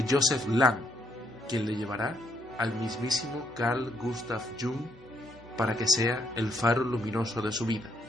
Joseph Lang, quien le llevará al mismísimo Carl Gustav Jung para que sea el faro luminoso de su vida.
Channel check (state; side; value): normal; both; correlation 0.73